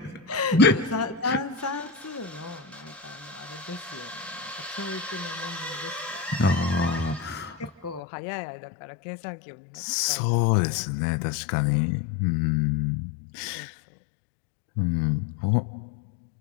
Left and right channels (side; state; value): right; drops out; at 8.0 s